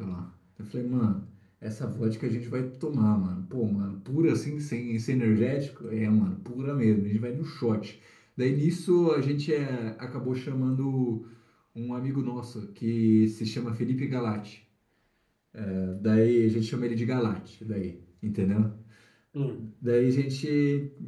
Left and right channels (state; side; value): identical; both; correlation 1.00